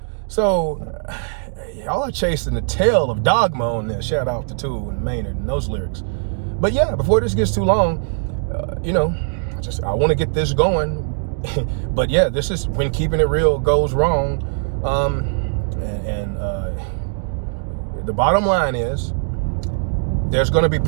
So y'all are chasing the tail of dogma on this. Shout out to Tool and Maynard and those lyrics. But yeah, before this gets too long, you know, I want to get this going. But yeah, this is when keeping it real goes wrong. The bottom line is there's going to be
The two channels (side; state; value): left; silent; digital silence